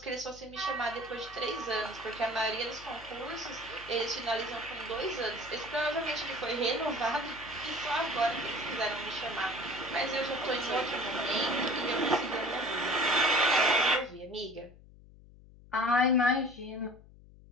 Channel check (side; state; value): left; noise; hum, 22 dB below the sound